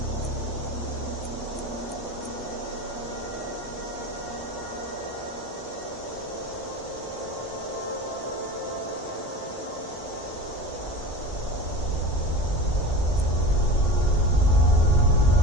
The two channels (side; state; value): both; normal; correlation 0.32